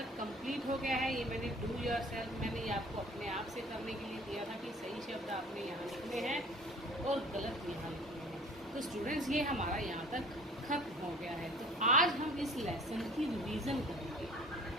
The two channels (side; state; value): both; normal; correlation 0.49